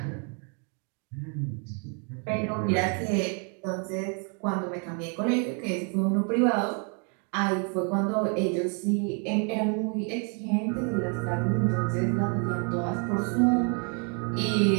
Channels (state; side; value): quieter; left; 38.3 dB